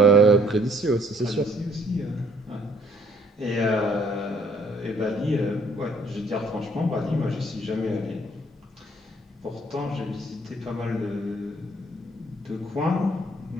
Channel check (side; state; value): both; normal; correlation 0.62